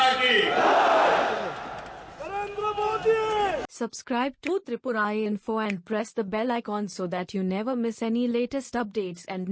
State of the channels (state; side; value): identical; both; correlation 1.00